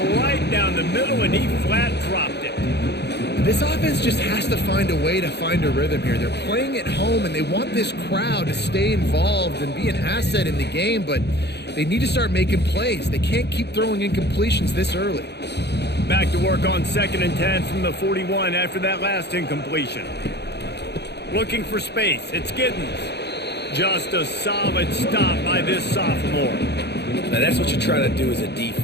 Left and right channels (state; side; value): late; right; 0.49 ms